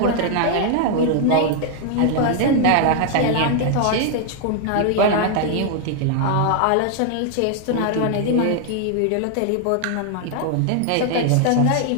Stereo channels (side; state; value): both; different; correlation 0.00